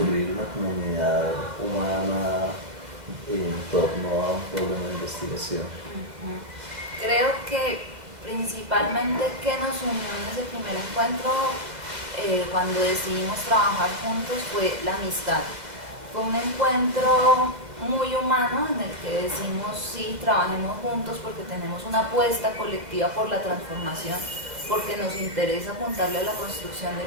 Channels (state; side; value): late; left; 2.1 ms